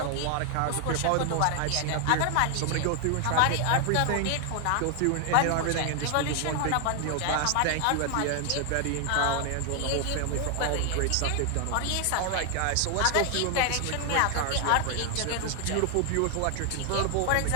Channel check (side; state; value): both; different; correlation 0.00